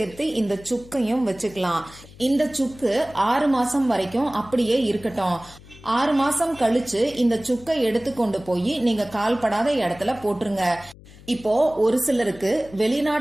இந்த சுக்கையும் வச்சுக்கலாம். இந்த சுக்கு 6 மாசம் வரைக்கும் அப்படியே இருக்கட்டும். 6 மாசம் கழிச்சு இந்த சுக்கை எடுத்து கொண்டு போய் நீங்க கால்படாத இடத்துல போட்டுருங்க. இப்போ ஒரு சிலருக்கு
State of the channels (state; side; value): noise; left; hum, 21 dB below the sound